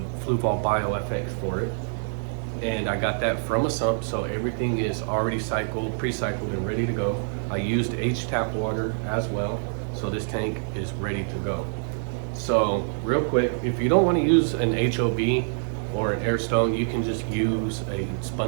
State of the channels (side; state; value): left; silent; 61 dB below the other